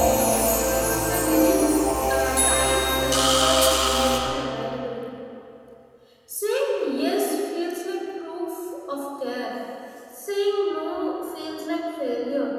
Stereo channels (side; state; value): both; identical; correlation 1.00